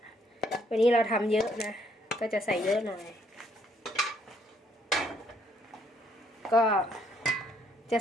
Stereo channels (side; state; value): both; normal; correlation 0.68